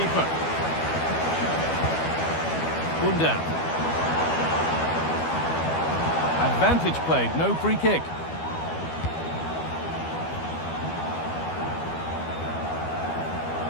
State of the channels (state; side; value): late; right; 12 ms